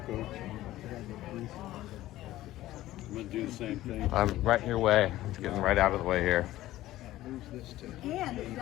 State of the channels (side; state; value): right; quieter; 15.3 dB